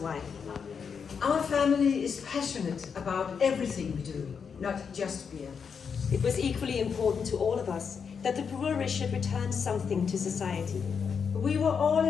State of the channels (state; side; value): quieter; right; 6.4 dB